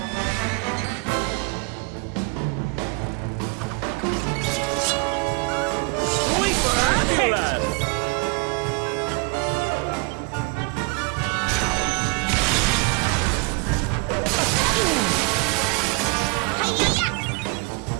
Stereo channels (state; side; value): quieter; left; 30.8 dB